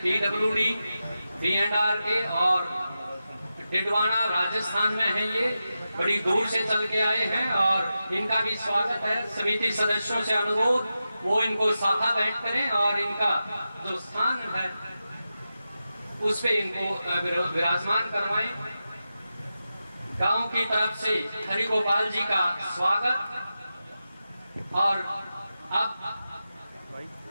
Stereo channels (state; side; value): inverted; both; correlation -0.91